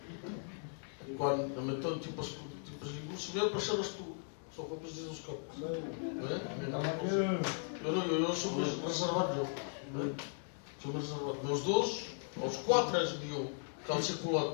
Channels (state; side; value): silent; right; 53 dB below the other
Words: Quand, mettons, tu passes, Samuel, pour ça, só for preciso os campos. Eu sou reservado. Sou reservado. Meus dois, aos 4 mil